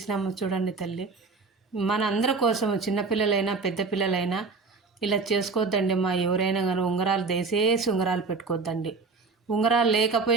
చూడండి తల్లి. మన అందరి కోసం, చిన్నపిల్లలైనా పెద్ద పిల్లలైనా ఇలా చేసుకోవద్దండి మా. ఎవరైనా కానీ ఉంగరాలు దయచేసి ఉంగరాలు పెట్టుకోవద్దండి. ఉంగరాలు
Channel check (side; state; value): left; quieter; 4.3 dB